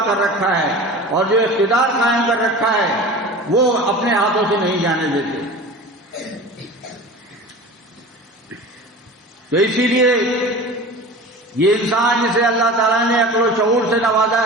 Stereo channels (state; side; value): normal; both; correlation 0.36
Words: کر رکھا ہے، اور جو اقتدار قائم کر رکھا ہے، وہ اپنے ہاتھوں سے نہیں جانے دیتے۔ تو اسی لیے یہ انسان جسے اللہ تعالیٰ نے عقل و شعور سے نوازا